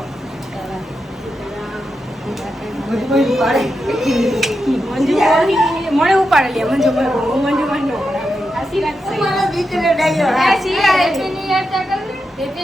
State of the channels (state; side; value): normal; both; correlation 0.87